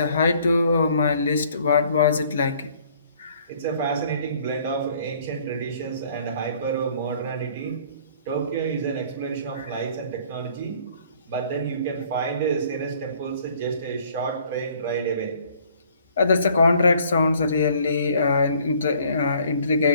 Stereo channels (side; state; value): both; inverted; correlation -0.58